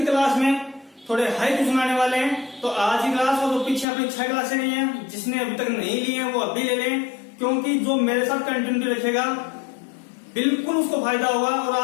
क्लास में थोड़े हाई क्वेश्चन आने वाले हैं। तो आज की क्लास और जो पीछे अपनी 6 क्लासें गई हैं, जिसने अभी तक नहीं ली है वो अभी ले लें, क्योंकि जो मेरे साथ कंटिन्यूटी रखेगा बिल्कुल उसको फायदा होगा। और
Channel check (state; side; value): drops out; right; at 3.9 s